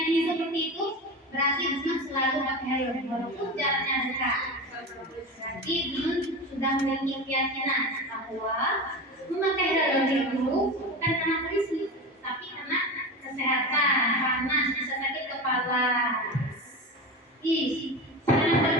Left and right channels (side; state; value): both; normal; correlation 0.25